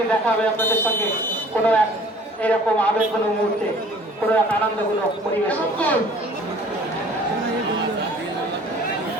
দেখা হবে আপনাদের সঙ্গে কোনো এক এরকম আবেগঘন মুহূর্তে, কোনো এক আনন্দঘন পরিবেশে।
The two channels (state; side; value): normal; both; correlation 0.51